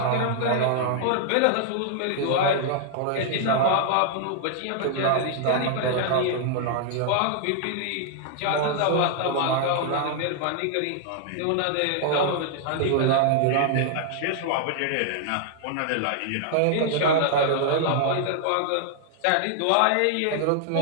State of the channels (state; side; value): different; both; correlation -0.01